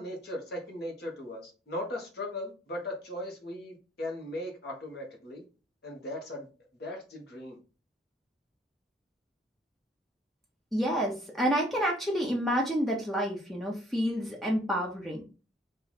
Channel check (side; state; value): both; normal; correlation 0.60